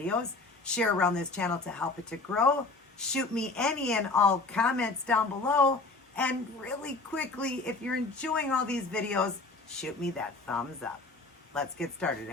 Share around this channel to help it to grow. Shoot me any and all comments down below. And really quickly, if you're enjoying all these videos, shoot me that thumbs up. Let's get started,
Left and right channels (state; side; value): quieter; right; 3.5 dB